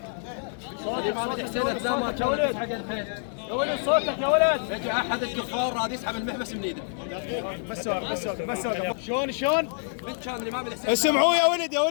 صوتك حسين لا ما كان حق الخير. يا ولد صوتك يا ولد. يجي احد الكفار راد يسحب المحبس من ايده. بس شلون؟ من كان الامام الحسين. اسمعوا يا ولد يا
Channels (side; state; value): right; silent; 60 dB below the other